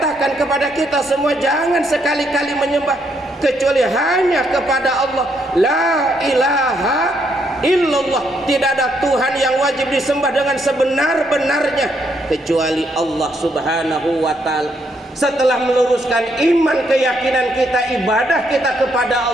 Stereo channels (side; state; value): both; normal; correlation 0.74